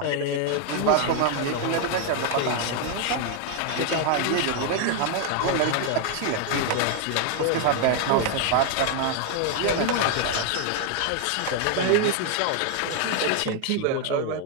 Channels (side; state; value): both; different; correlation 0.01